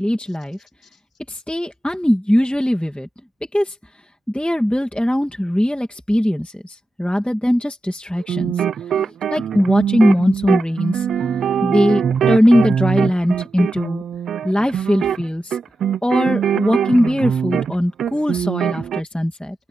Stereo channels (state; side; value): normal; both; correlation 0.91